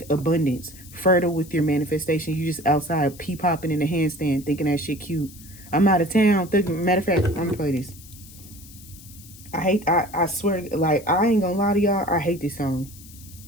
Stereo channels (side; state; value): left; noise; hiss, 20 dB below the sound